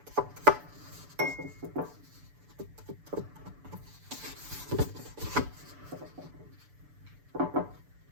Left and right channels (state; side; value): late; left; 6.9 ms